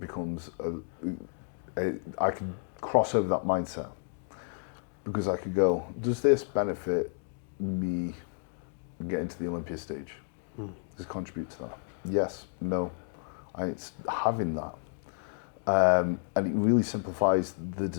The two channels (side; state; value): right; silent; 57 dB below the other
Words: I can cross over that mindset. Because I could go, does this benefit me getting to the Olympia stage? Does it contribute to that? Yes, no. And it's having that. And it really simplifies the